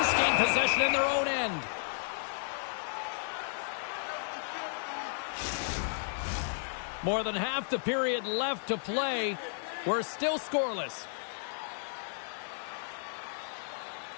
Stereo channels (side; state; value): right; silent; digital silence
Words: gain possession in their own end. More than half the period left to play. We're still scoreless.